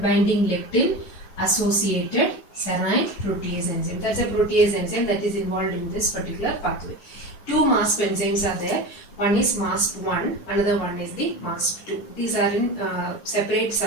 lectin associated serine protease enzyme. That's a protease enzyme that is involved in this particular pathway. Two MASP enzymes are there. One is MASP1, another one is the MASP2. These are in separate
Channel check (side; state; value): right; late; 10 ms